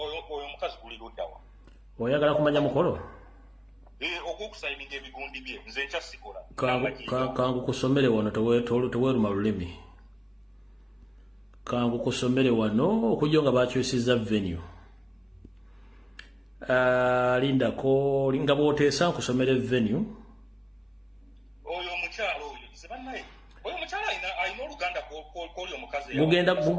omukazi guli luddawa oyagala kumanya mukolo ogw'okusayininga ebigundi bye nze ekyasikola kangu kusomere wano teweeruma lulimi kangu kusomere wano okujja nga bakyusiza venue lindako nga bw'oteesa nkusomere venue oyo omukyala oyo sebannaye oyo omukyala alina oluganda kw'oli omukazi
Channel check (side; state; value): both; identical; correlation 1.00